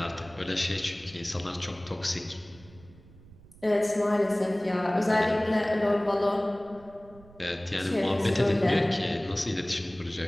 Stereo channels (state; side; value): noise; right; rumble, 23 dB below the sound